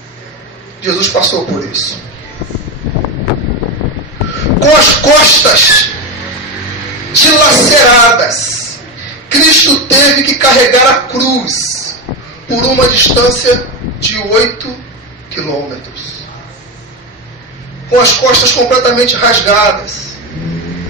Jesus passou por isso. Com as costas dilaceradas, Cristo teve que carregar a cruz por uma distância de 8 quilômetros. Com as costas completamente rasgadas,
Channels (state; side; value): normal; both; correlation 0.14